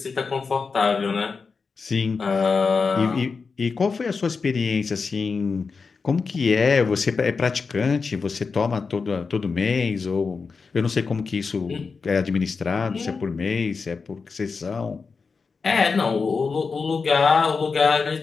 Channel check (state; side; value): quieter; right; 4.9 dB